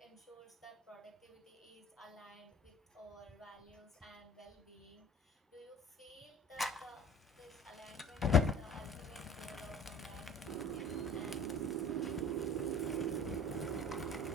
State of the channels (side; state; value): both; normal; correlation 0.44